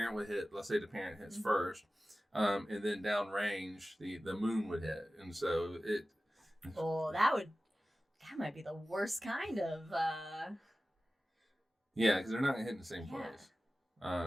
would hit. Let's say the parent hits first, and then downrange the moon would hit, and so it. Oh, that might be the worst kind of. Yeah, because they're not hitting the same place.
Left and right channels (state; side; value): normal; both; correlation 0.95